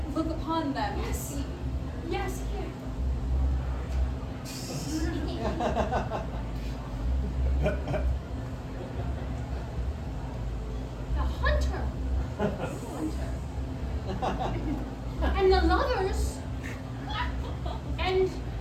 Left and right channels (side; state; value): both; identical; correlation 1.00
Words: look upon them to see. Yes, here. The hunter and the lovers and